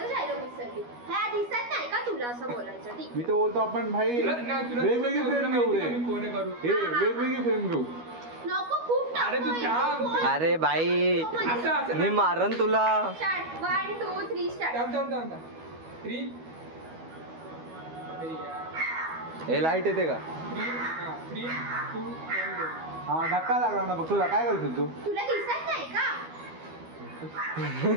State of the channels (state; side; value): late; left; 12 ms